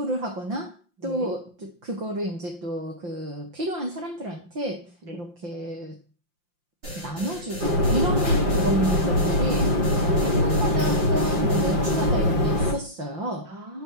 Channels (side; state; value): left; late; 5.7 ms